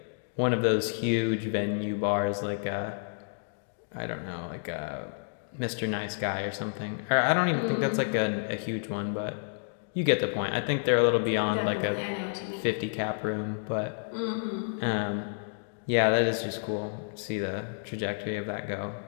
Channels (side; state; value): right; silent; digital silence